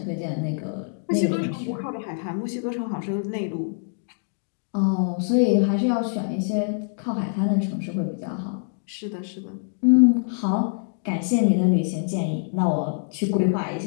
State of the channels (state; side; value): silent; right; digital silence